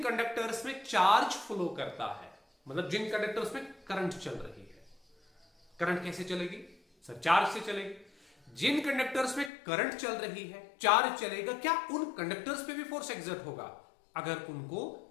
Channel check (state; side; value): drops out; right; at 9.5 s